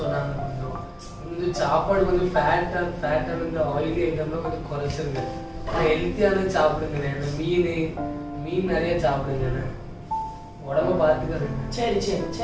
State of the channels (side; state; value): both; identical; correlation 1.00